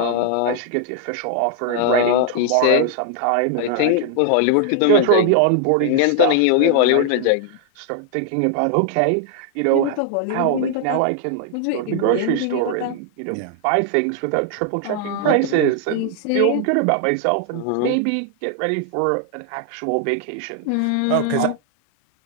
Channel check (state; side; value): different; both; correlation 0.00